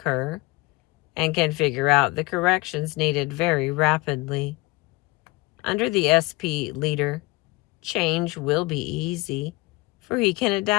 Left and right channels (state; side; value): quieter; right; 22.5 dB